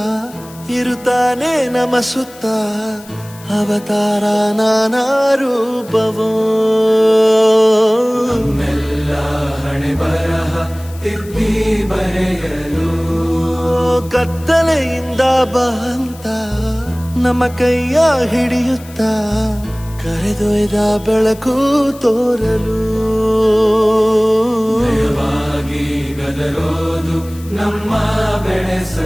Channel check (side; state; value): left; noise; hiss, 21 dB below the sound